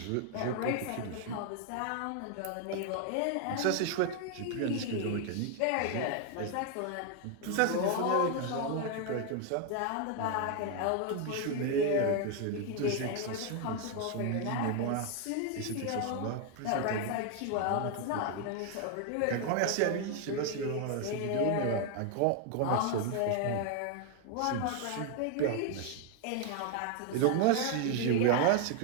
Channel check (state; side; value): different; both; correlation 0.00